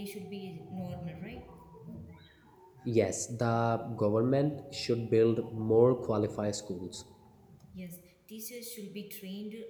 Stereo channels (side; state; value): both; identical; correlation 1.00